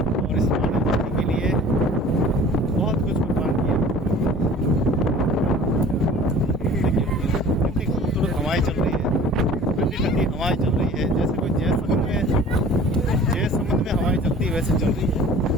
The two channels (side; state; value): both; normal; correlation 0.45